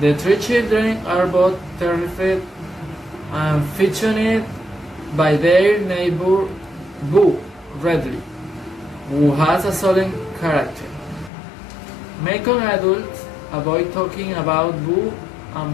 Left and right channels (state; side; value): drops out; right; at 11.3 s